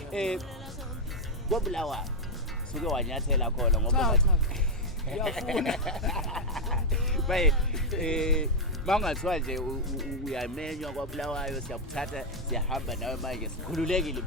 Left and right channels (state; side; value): normal; both; correlation 0.01